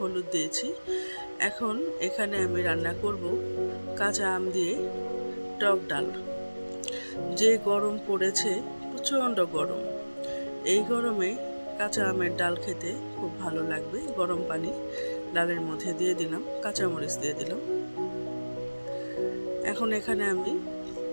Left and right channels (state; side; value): inverted; both; correlation -1.00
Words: দিয়েছি। এখন এখানে আমি রান্না করব কাঁচা আম দিয়ে টক ডাল। যে গরম পড়েছে, প্রচণ্ড গরম, এই গরমে কাঁচা আমের ডাল খেতে খুব ভালো লাগবে। গরম পানি ডালের মধ্যে দিয়ে দিলাম, কাঁচামরিচ দিয়ে দিলাম। এখন এখানে আমি